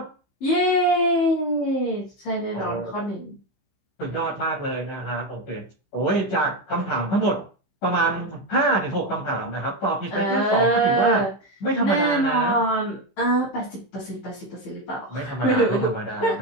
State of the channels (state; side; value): late; right; 15 ms